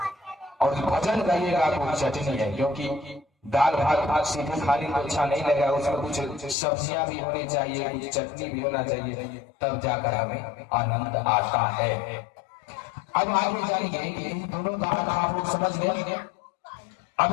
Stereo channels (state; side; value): drops out; right; at 6.6 s